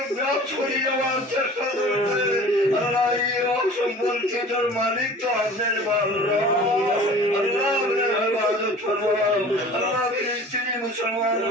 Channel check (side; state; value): both; normal; correlation 0.43